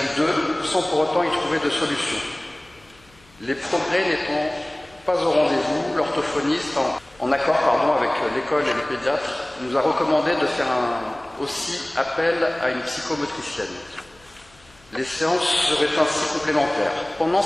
2, sans pour autant y trouver de solution. Les progrès n'étant pas au rendez-vous, l'orthophoniste, en accord avec l'école et le pédiatre, nous a recommandé de faire aussi appel à une psychomotricienne. Les séances seraient ainsi complémentaires. Pendant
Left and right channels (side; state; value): left; noise; hum, 29 dB below the sound